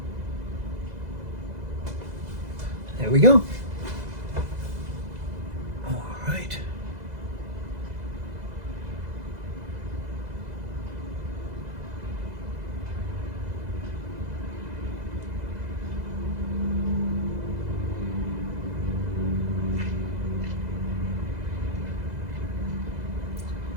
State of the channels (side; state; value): left; late; 2.0 ms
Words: There we go. All right.